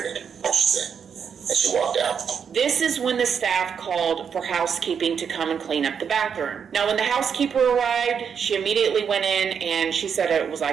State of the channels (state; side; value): quieter; left; 7.1 dB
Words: She said. And she walked out. This is when the staff called for housekeeping to come and clean up the bathroom. Now, when the housekeeper arrived, she immediately went in and she said it was